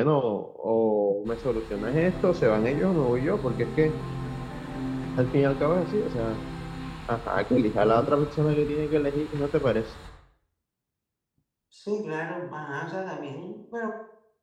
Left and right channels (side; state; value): both; identical; correlation 1.00